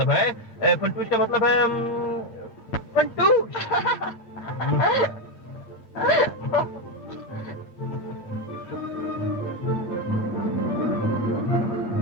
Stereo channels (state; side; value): late; right; 8.7 ms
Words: है। फंटूश का मतलब है फंटूश।